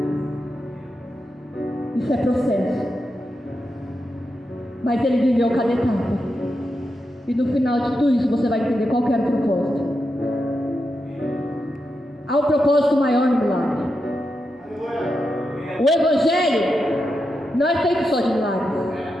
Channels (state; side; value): normal; both; correlation 0.87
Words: Isso é processo. Mas ele viveu cada etapa. E no final de tudo isso você vai entender qual que era o propósito. Há um propósito maior no milagre. O Evangelho não é feito só de milagres.